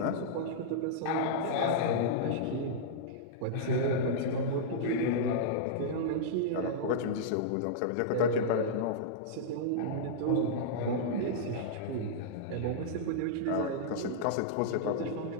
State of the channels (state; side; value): different; both; correlation -0.03